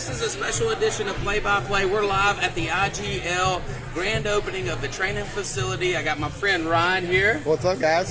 is a special edition of Play by Play. We're live at the IGL grand opening of the training facility. I got my friend Ryan here. What's up,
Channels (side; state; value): both; identical; correlation 1.00